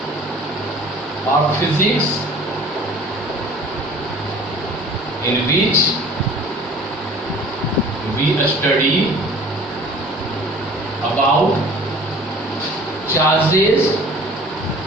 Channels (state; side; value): normal; both; correlation 0.47